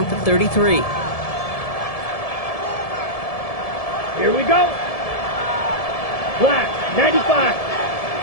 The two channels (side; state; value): right; late; 1.7 ms